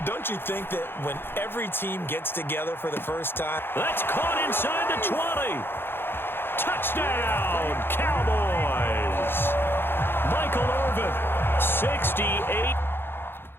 Don't you think that when every team gets together for the first time? That's caught inside the 20. Touchdown, Cowboys. Michael Irvin, 68.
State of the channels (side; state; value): right; late; 0.10 ms